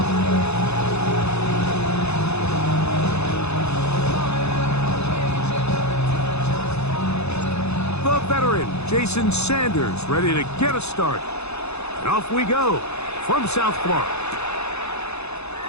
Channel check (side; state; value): right; late; 0.80 ms